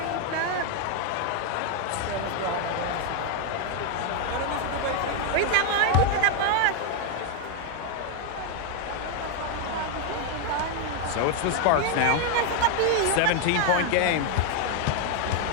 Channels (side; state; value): both; different; correlation 0.01